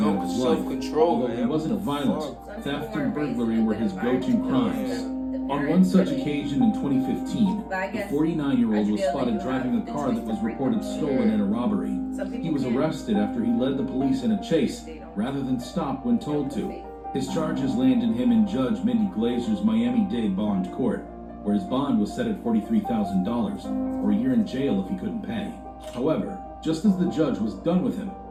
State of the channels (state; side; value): identical; both; correlation 1.00